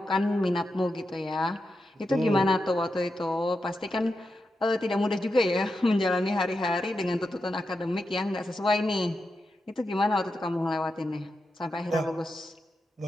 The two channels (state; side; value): normal; both; correlation 0.88